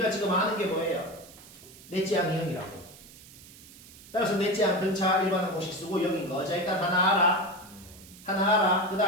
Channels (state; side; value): noise; right; hiss, 20 dB below the sound